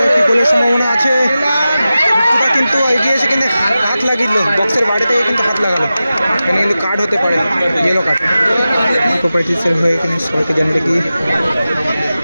একটি গোলের সম্ভাবনা আছে। বিট্টুদা কিন্তু এগিয়ে এসে কিন্তু হাত লাগিয়ে দিল, বক্সের বাইরে থেকে কিন্তু হাত লাগালো। এখানে কিন্তু কার্ড হতে পারে, ইয়েলো কার্ড। প্রোপাইটিসের হয়ে কিন্তু সবাইকে জানিয়ে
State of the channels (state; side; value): inverted; both; correlation -0.94